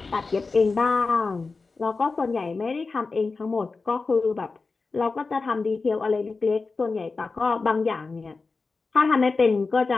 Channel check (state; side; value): quieter; right; 4.1 dB